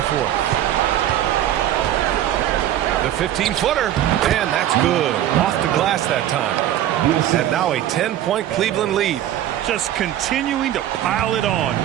fourth. The 15-footer, and that's good. Off the glass that time. And now a 10-point Cleveland lead. Just continuing to pile it on,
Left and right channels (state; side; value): quieter; left; 12.0 dB